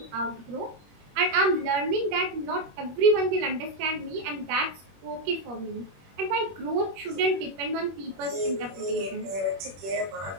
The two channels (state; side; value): late; left; 21 ms